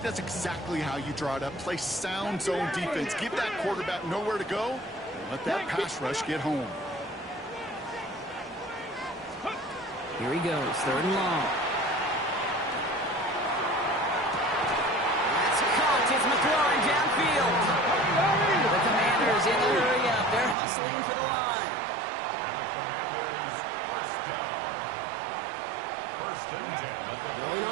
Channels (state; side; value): drops out; left; at 20.6 s